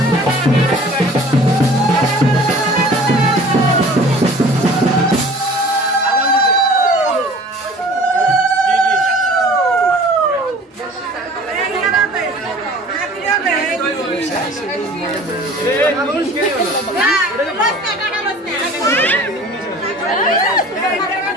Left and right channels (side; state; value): both; normal; correlation 0.46